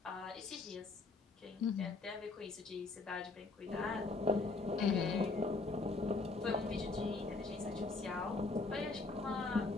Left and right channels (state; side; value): quieter; right; 3.7 dB